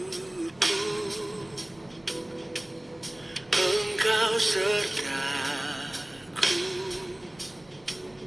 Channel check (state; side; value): noise; right; rumble, 29 dB below the sound